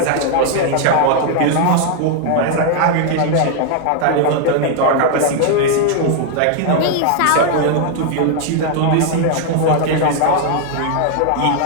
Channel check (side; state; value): both; different; correlation 0.00